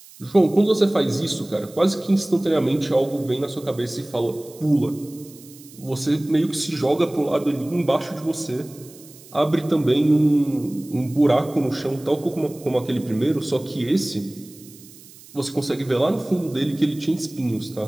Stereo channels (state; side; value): noise; right; hiss, 21 dB below the sound